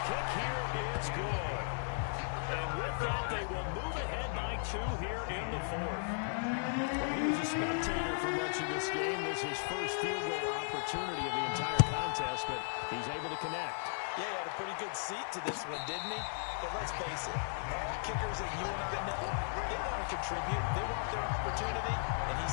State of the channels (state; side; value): silent; right; 54 dB below the other